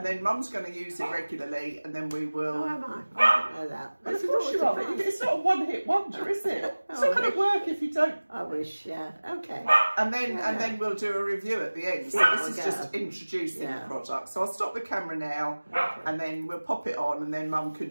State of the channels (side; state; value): both; inverted; correlation -1.00